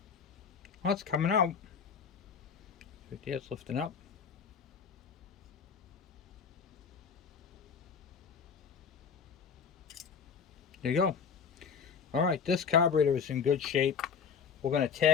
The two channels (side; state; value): right; quieter; 6.6 dB